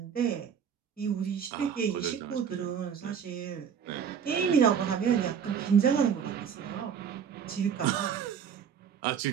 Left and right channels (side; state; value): left; quieter; 7.6 dB